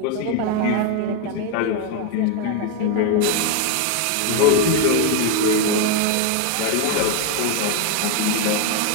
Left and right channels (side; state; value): both; different; correlation 0.01